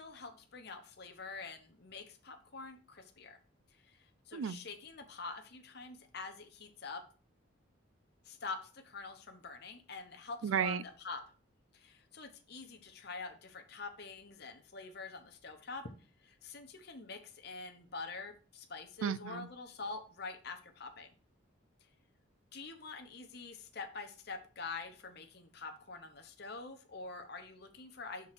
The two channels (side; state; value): both; normal; correlation -0.10